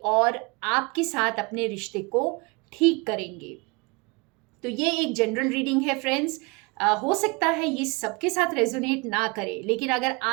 और आपके साथ अपने रिश्ते को ठीक करेंगे। तो ये एक जनरल रीडिंग है फ्रेंड्स। हो सकता है ये सबके साथ रेजोनेट ना करे, लेकिन अगर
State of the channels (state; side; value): quieter; left; 28.1 dB